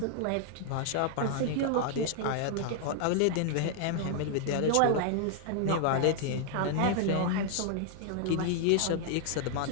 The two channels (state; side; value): different; both; correlation 0.00